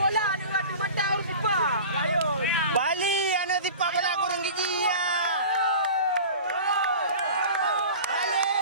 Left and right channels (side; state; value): both; inverted; correlation -0.38